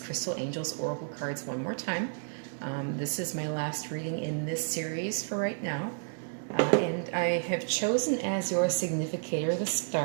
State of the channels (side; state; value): left; silent; digital silence